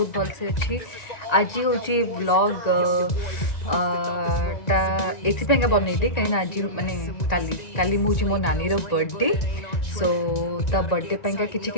भल से अच्छी। आज हूँ व्लॉग टा एपाई बनईली कहीं आज माने काली मुझे मो नानी बर्थडे। सो ता बर्थडे पाइंका किछि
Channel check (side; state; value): right; late; 1.9 ms